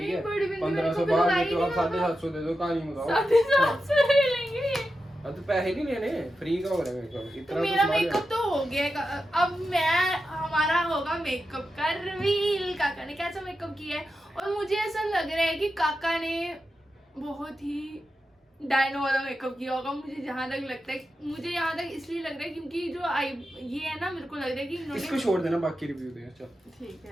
है 1500 बाद में तो आप 750 दे दो, कहानी बताओ। 750 ले लेंगे। अब तो पैसे नहीं लेने, फ्री का हो रहा है मेकअप। इतना मेरा मेकअप तो हो गया। अब हमारा होगा मेकअप का रिवील। काका ने कैसा मेकअप किया है, और मुझे ऐसा लग रहा है कि काका ने बहुत ही डायनो वाला मेकअप किया होगा। मुझे जहाँ तक लगता है, मुझे यहाँ तक इसलिए लग रहा है क्योंकि जो ये है ना, मेरे को लग रहा है कि इन्होंने इसको छोड़ देना, बाकी रिव्यू दे। चल ठीक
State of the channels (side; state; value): both; normal; correlation 0.90